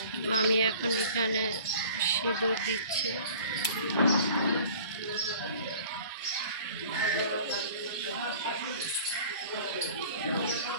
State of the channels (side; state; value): both; inverted; correlation -0.47